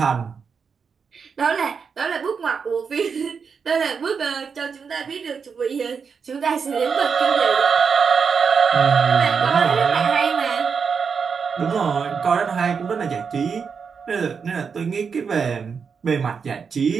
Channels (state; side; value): quieter; left; 6.0 dB